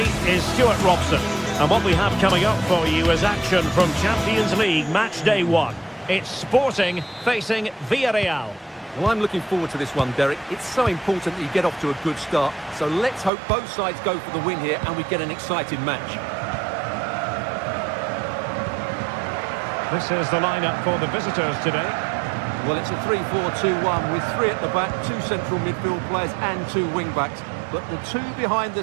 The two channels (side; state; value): left; drops out; at 13.3 s